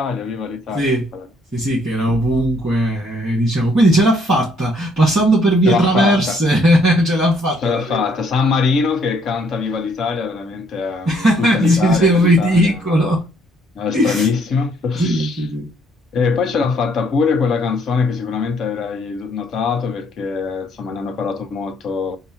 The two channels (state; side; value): normal; both; correlation 0.67